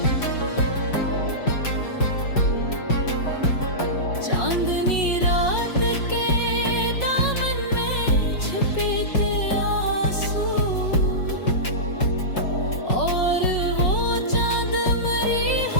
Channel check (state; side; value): late; right; 5.4 ms